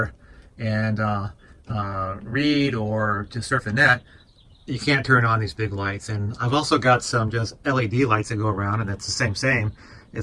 and read or just surf the net, you can't turn on these big lights. And I've also got some just LED lights that go around, and that's the same,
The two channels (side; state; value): both; identical; correlation 1.00